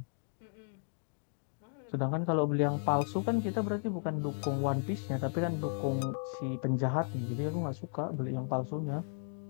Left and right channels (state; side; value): silent; right; 55 dB below the other